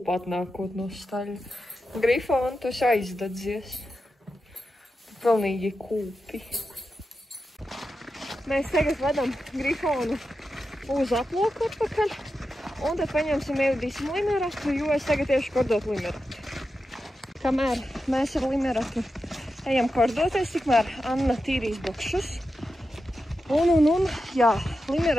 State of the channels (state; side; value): normal; both; correlation 0.90